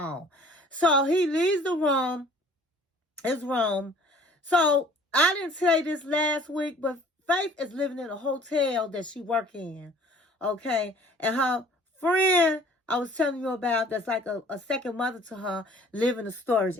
So he leaves his room. So I didn't tell you this last week, but Faith is living in a hotel that she works in. Okay. And her friend I was telling you about, that's like a second mother to her, live in a storage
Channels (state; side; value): normal; both; correlation 0.52